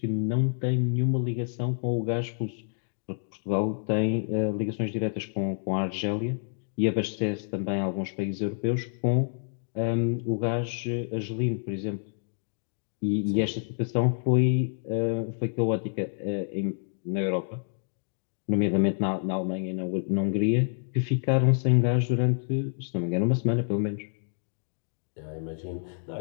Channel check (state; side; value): silent; right; digital silence